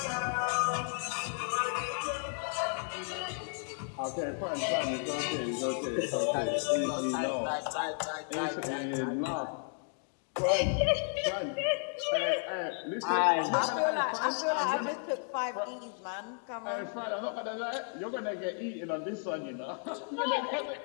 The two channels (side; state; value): right; silent; 56 dB below the other